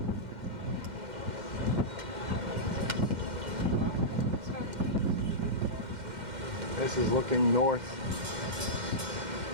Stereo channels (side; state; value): left; late; 2.1 ms